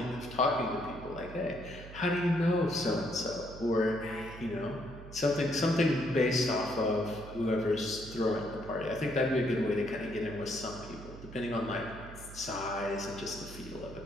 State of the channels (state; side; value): noise; right; hum, 14 dB below the sound